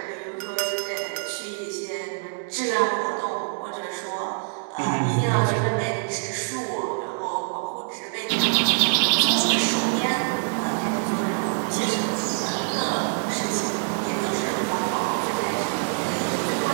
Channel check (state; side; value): silent; left; digital silence